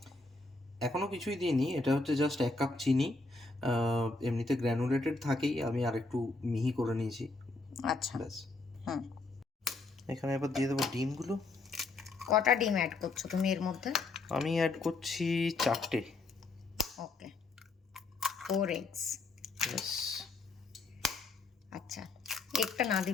এখনো কিছুই দিইনি, এটা হচ্ছে জাস্ট 1 কাপ চিনি। এমনিতে গ্র্যানুলেটেড থাকেই, আমি আরেকটু মিহি করে নিয়েছি। আচ্ছা। ব্যাস। হুম। এখানে এবার দিয়ে দেবো ডিমগুলো। কটা ডিম অ্যাড করছো তুমি এর মধ্যে? আমি অ্যাড করছি 4টে। ওকে, 4 eggs। ব্যাস। আচ্ছা, একটা না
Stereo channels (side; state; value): right; quieter; 3.5 dB